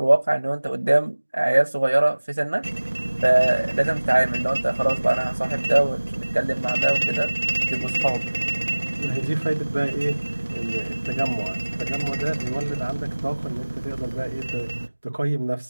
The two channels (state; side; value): inverted; both; correlation -1.00